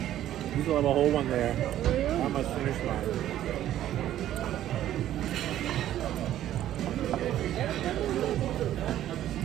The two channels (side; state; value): left; quieter; 12.4 dB